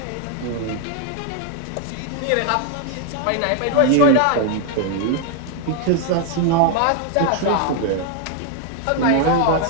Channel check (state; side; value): different; both; correlation 0.00